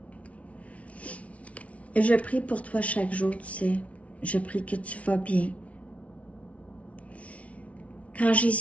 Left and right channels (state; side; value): late; right; 0.065 ms